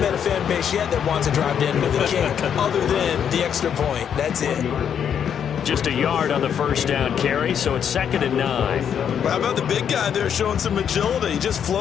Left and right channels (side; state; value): right; quieter; 8.3 dB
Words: met a fan base yet that wants to drive to end with a kick, other than the extra point. That's it. Just a yard on the first down carry, so it's 2nd and 9. Well, how about the big guy there showing some agility? He just